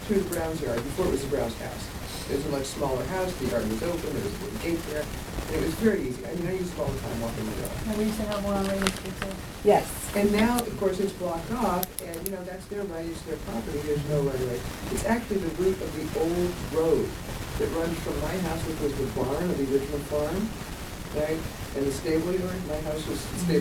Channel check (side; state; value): both; identical; correlation 1.00